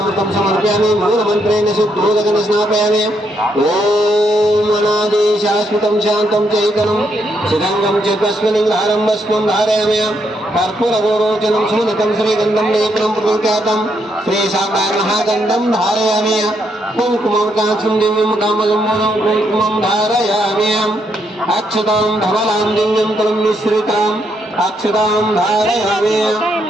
समर्पयामि मूलमन्त्रेण शुद्धोदकं स्नापयामि ॐ अनादि शाश्वतं शान्तं चैतनं चिरङ्गं च कस्मिन्लिङ्गहारं भस्मं धारयामि कर्पूरगोरोचनं सुमनकं श्रीगन्धं लेपनं प्रकृत्यातं श्रीशाकामहागन्धं धारयामि कुङ्कुमं काक्षं दिव्यं कामगम्बुदं कुङ्कुमं धारयामि अक्षतां धवलां दिव्यं तलं मिश्रिताम् अक्षतां धारयामि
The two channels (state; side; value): normal; both; correlation 0.76